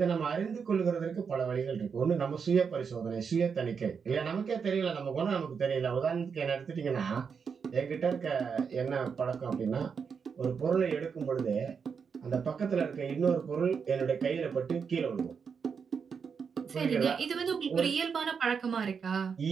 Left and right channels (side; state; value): left; quieter; 6.2 dB